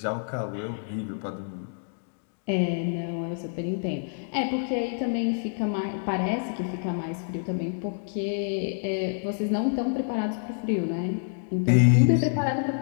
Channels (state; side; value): silent; right; digital silence